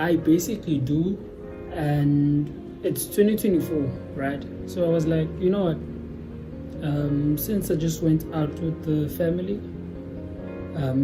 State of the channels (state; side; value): identical; both; correlation 1.00